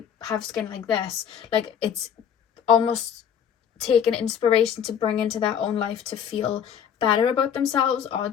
have skin like this? Like it's almost taking inspiration to bring into their own life to feel better about themselves, or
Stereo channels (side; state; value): right; quieter; 8.3 dB